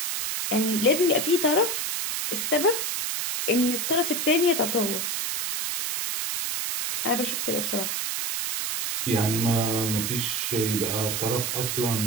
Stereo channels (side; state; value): right; noise; hiss, 1 dB below the sound